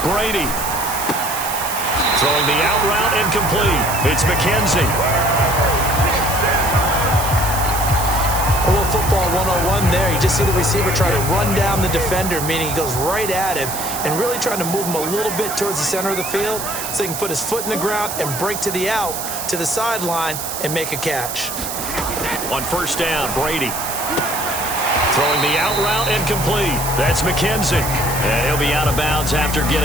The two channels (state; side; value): noise; right; hiss, 6 dB below the sound